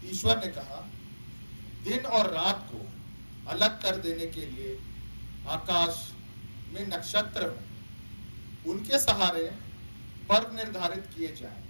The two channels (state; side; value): inverted; both; correlation -1.00